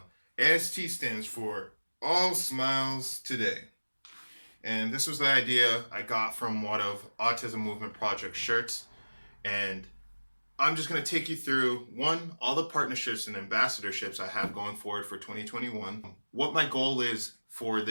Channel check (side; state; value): both; inverted; correlation -1.00